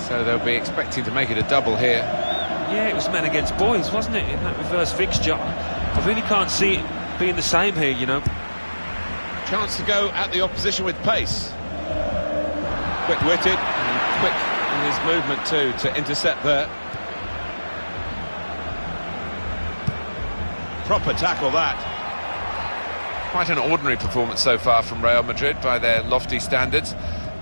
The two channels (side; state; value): both; inverted; correlation -1.00